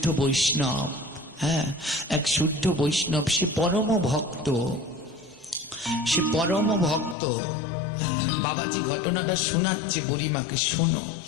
বৈষ্ণব, এক শুদ্ধ বৈষ্ণব, সে পরম ভক্ত, বাবাজি ঘটনাটা শোনাচ্ছে বুড়িমাকে, শোনো।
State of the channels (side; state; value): right; drops out; at 7.2 s